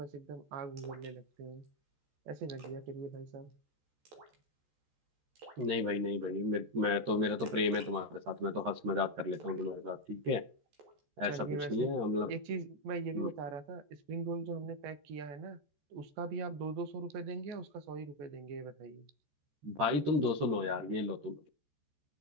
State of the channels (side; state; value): left; late; 14 ms